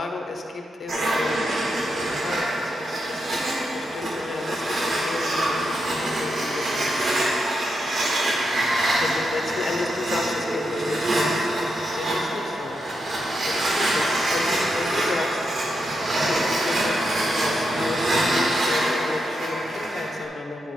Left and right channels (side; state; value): both; normal; correlation 0.84